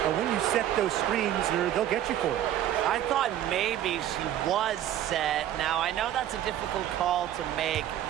But when you set those screens, they'll get you for it. I thought maybe she was set. Now, I know that's a difficult call to make,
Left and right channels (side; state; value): left; quieter; 11.8 dB